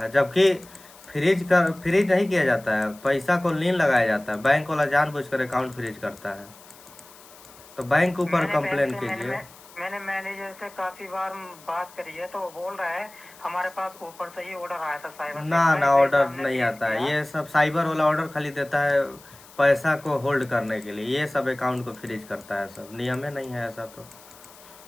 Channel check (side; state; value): left; noise; hiss, 22 dB below the sound